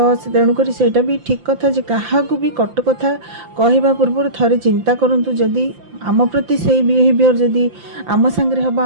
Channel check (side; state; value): left; late; 5.8 ms